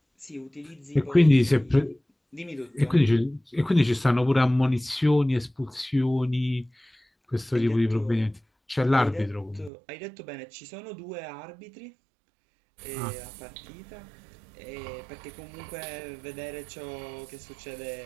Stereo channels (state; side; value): drops out; left; at 9.7 s